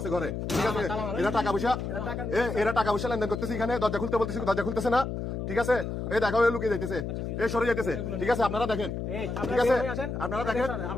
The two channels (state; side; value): noise; left; hum, 4 dB below the sound